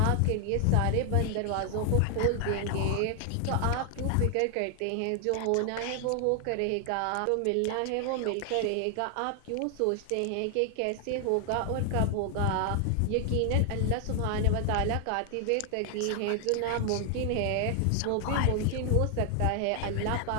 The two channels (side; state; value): both; different; correlation 0.00